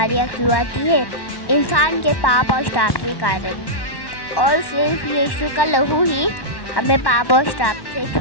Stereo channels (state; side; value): late; right; 1.1 ms